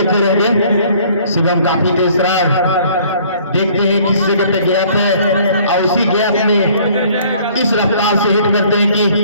रहेंगे। शिवम काफी तेज रहा, देखते हैं किस जगह पे गैप है और उसी गैप में इस रफ्तार से हिट करते हैं कि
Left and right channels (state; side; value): inverted; both; correlation -0.56